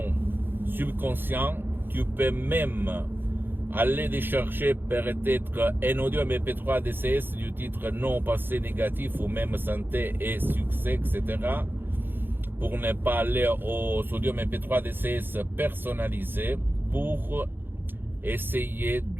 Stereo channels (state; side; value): late; left; 0.099 ms